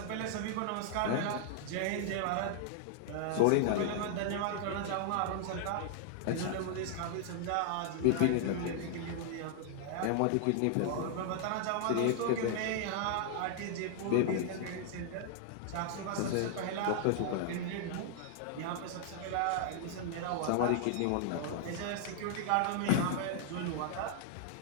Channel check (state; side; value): different; both; correlation -0.01